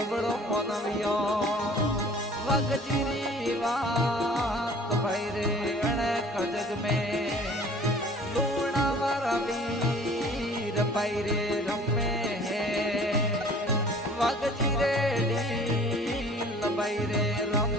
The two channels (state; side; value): normal; both; correlation 0.49